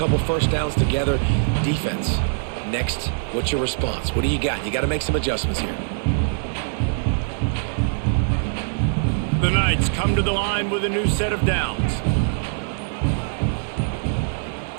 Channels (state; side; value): silent; left; digital silence